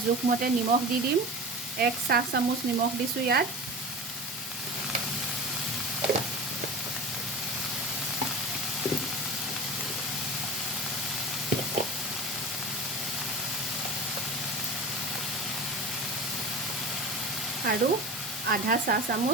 জোখমতে নিমখ দি দিম। 1 চাহ চামুচ নিমখ দিছোঁ ইয়াত। আৰু আধা চাহ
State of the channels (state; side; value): normal; both; correlation 0.33